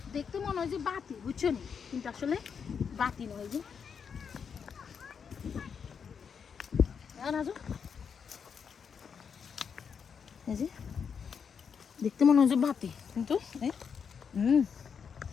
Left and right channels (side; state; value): right; quieter; 6.6 dB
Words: দেখতে মনে হয় যে বাতি বুঝছো নি কিন্তু আসলে বাতি নয় যে রাজু এই যে দেখতে মনে হয় যে বাতি কিন্তু